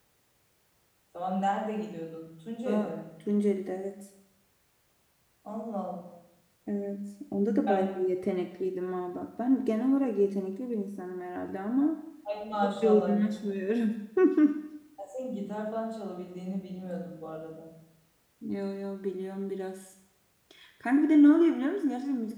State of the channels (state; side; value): identical; both; correlation 1.00